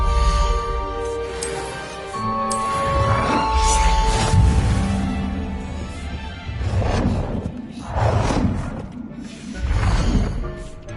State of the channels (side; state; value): both; identical; correlation 1.00